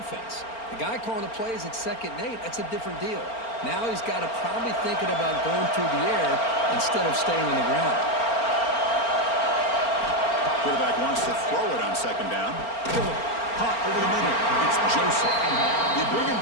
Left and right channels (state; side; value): late; right; 4.4 ms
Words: The guy calling the plays at 2nd and 8, that's a different deal. Now he's got to probably thinking about going through the air instead of staying on the ground. Quarterback wants to throw it on second down. Caught over the middle. It's Joseph. You bring him